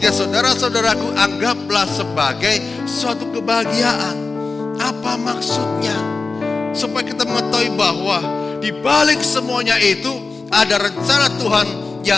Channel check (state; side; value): quieter; right; 4.0 dB